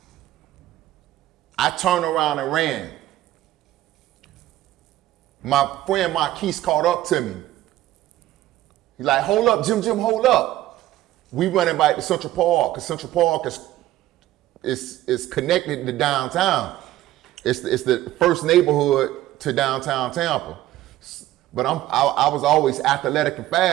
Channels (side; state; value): left; quieter; 14.7 dB